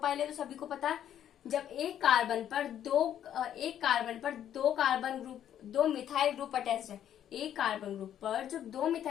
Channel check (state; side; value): quieter; right; 10.4 dB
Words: है, तो सभी को पता है। जब एक कार्बन पर दो मिथाइल ग्रुप अटैच्ड है, एक कार्बन ग्रुप पर जब दो